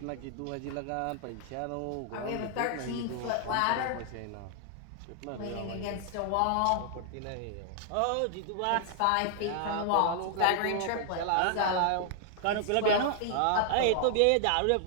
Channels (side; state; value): both; different; correlation 0.00